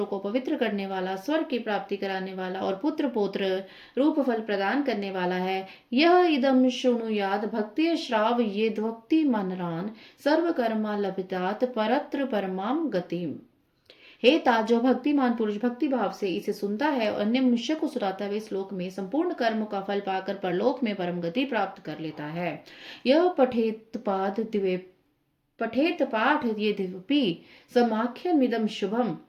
को पवित्र करने वाला, स्वर्ग की प्राप्ति कराने वाला और पुत्र पौत्र रूप फल प्रदान करने वाला है। यह इदम शृणुयाद भक्ति श्राव ये द्वक्ति मनरान सर्व कर्मा लभितात परत्र परमाम गतिम। हे ता, जो भक्तिमान पुरुष भक्ति भाव से इसे सुनता है और अन्य मनुष्य को सुनाता है, इस लोक में संपूर्ण कर्म का फल पाकर परलोक में परम गति प्राप्त कर लेता है। यह पठेत पाद दिवे पठेत पाठ यद्यपि समाख्यमिदं शुभम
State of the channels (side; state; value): both; identical; correlation 1.00